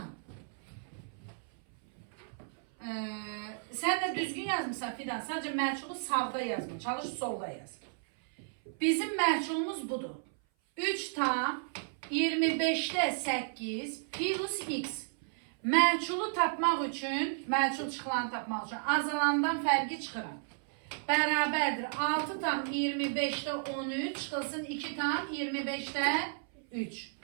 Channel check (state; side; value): silent; left; 56 dB below the other